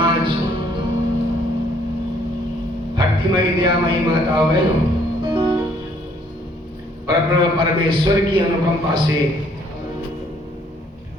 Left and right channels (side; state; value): both; normal; correlation 0.64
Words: भक्तिमयी दयामयी माताओं बहनों, परब्रह्म परमेश्वर की अनुकंपा से